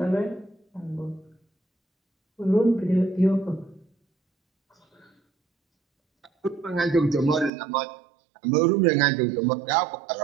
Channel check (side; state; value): left; drops out; at 7.5 s